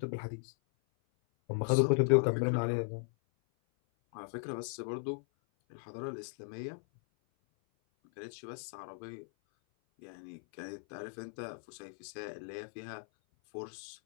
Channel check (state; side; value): silent; right; 53 dB below the other